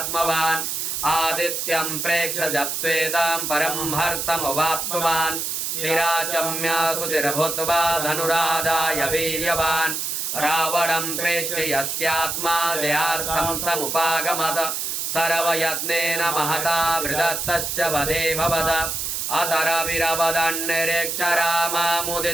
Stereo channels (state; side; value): noise; right; hiss, 2 dB below the sound